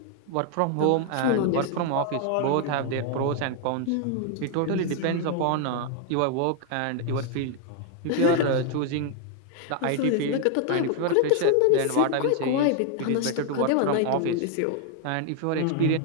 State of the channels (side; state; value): both; different; correlation 0.00